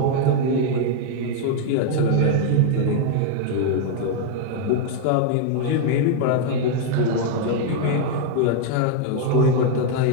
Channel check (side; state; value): both; different; correlation 0.00